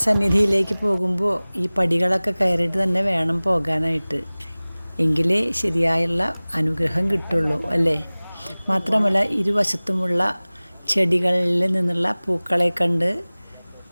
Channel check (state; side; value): inverted; both; correlation -1.00